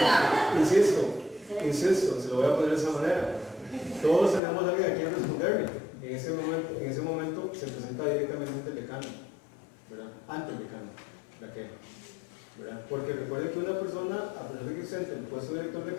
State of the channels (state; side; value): drops out; right; at 4.4 s